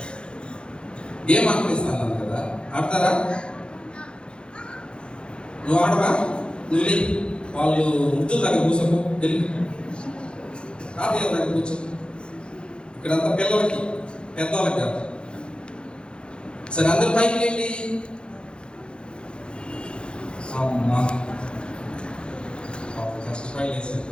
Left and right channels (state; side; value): late; right; 0.053 ms